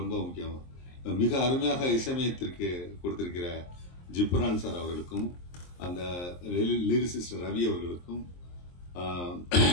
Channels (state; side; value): late; right; 23 ms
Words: முக்கியம் மிக அருமையாக இசையமைத்திற்கு கொடுத்திருக்கிற ஜிப்ரான் சார் அவர்களுக்கும், அந்த லிரிசிஸ்ட் ரவி அவர்களுக்கும்,